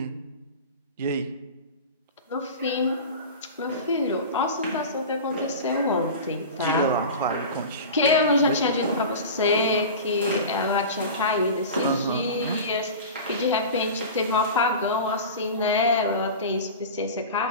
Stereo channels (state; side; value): inverted; both; correlation -0.31